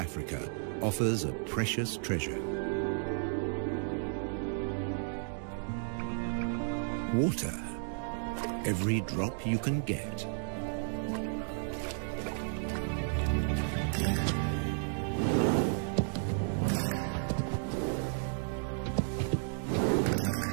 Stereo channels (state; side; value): silent; left; digital silence